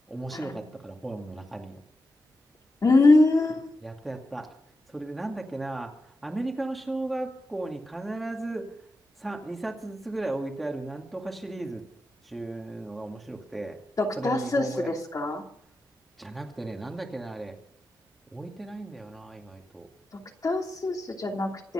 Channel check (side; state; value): both; normal; correlation 0.90